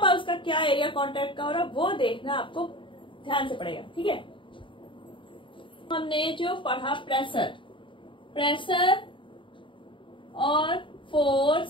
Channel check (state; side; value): late; right; 0.24 ms